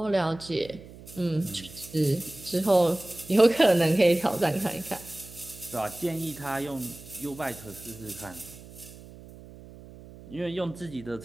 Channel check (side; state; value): right; noise; hum, 18 dB below the sound